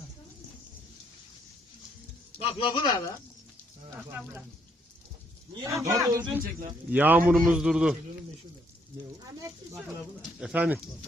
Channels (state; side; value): normal; both; correlation 0.70